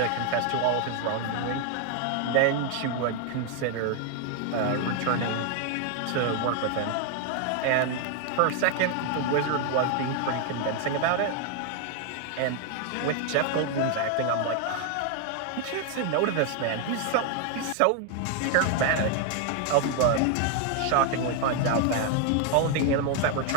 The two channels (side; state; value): both; different; correlation 0.01